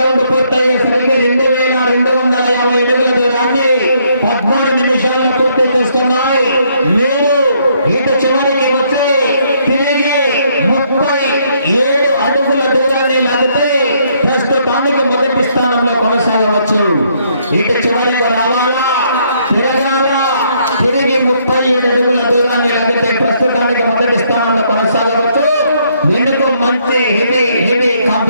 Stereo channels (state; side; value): inverted; both; correlation -0.70